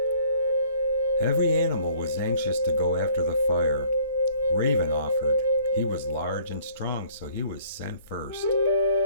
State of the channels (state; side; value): inverted; both; correlation -0.57